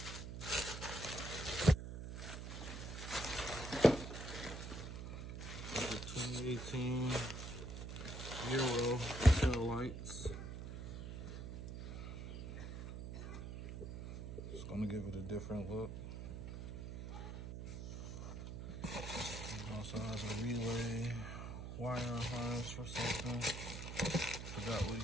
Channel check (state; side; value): noise; right; hum, 7 dB below the sound